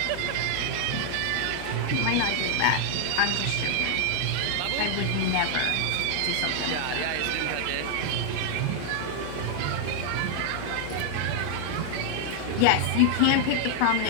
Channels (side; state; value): both; different; correlation 0.00